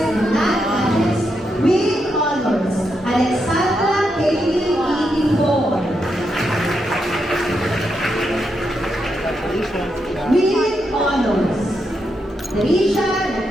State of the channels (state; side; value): normal; both; correlation 0.83